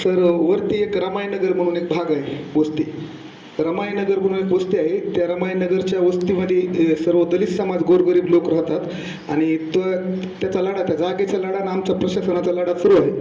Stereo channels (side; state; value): both; identical; correlation 1.00